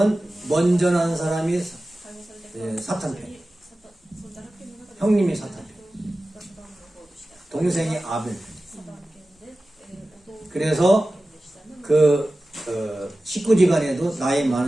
먼저 난 사람이 사탄편. 형님이 사탄편. 동생이 아벨. 그래서 그 식구지간에도 나이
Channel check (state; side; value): normal; both; correlation 0.95